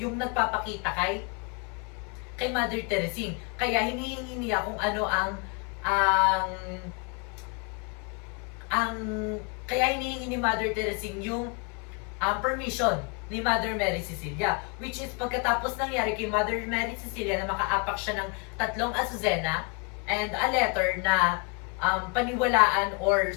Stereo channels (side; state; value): right; quieter; 33.9 dB